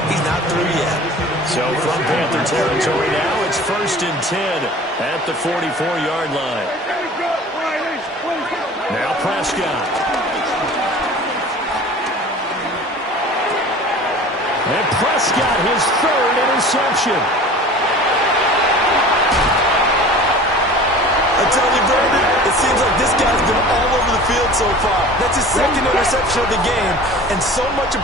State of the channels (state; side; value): normal; both; correlation 0.42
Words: he's not through yet. So from Panther territory now, it's 1st and 10 at the 44-yard line. Now Prescott. And Prescott, his 3rd interception. I tell you, Brandon, it seems like this guy's been all over the field so far. That's his 2nd interception of the game. And so much